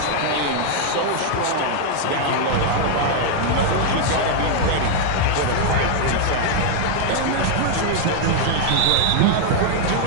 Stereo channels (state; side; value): different; both; correlation 0.00